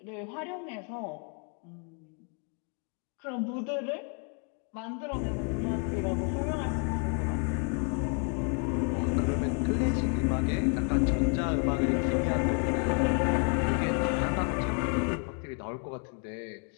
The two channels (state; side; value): quieter; right; 39.1 dB